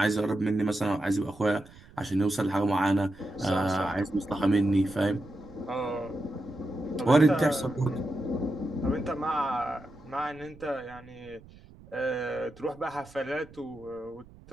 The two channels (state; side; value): noise; right; rumble, 22 dB below the sound